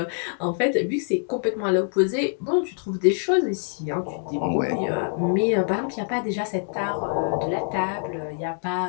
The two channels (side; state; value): right; silent; digital silence